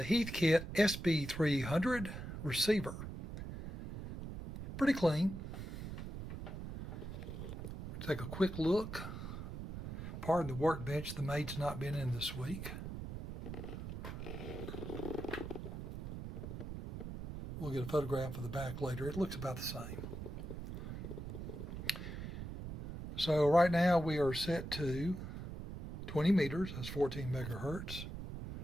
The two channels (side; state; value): right; noise; rumble, 8 dB below the sound